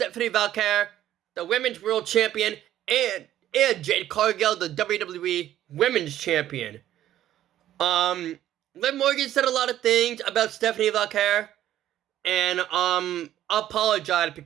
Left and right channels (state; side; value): quieter; left; 12.4 dB